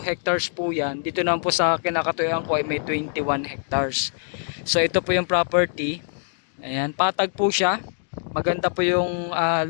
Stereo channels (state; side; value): silent; right; 61 dB below the other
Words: hectares po yan. Dito naman po sa kinakatuyuan ko ay may 21 hectares. So ito po yung property. Ayan, patag po siya. Maganda po yung